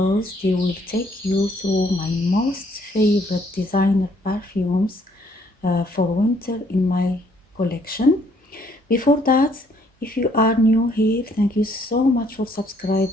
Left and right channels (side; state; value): both; normal; correlation 0.66